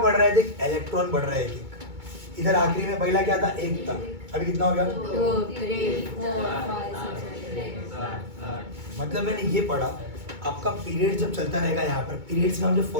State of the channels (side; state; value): left; late; 2.2 ms